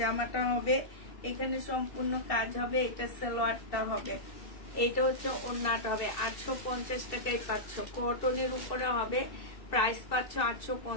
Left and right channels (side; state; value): right; late; 2.7 ms